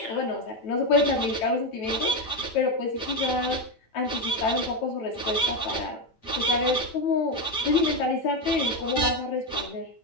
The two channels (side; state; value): right; late; 9.1 ms